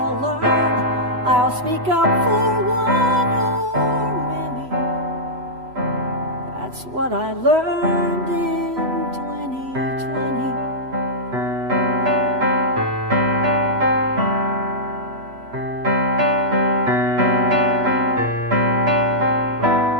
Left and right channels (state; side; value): late; left; 3.0 ms